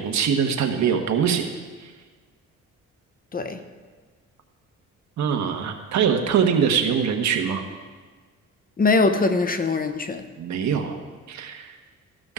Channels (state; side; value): quieter; left; 3.2 dB